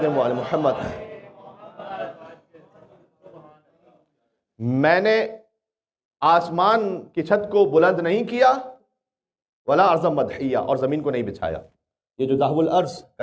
وعلى محمد. میں نے آسمان کی چھت کو بلند نہیں کیا ولا ارض مدحیہ, اور زمین کو نہیں بچھایا. یہ جو دحو الارض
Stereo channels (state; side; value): identical; both; correlation 1.00